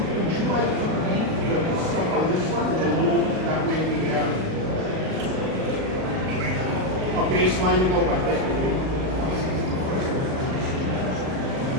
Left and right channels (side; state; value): left; late; 38 ms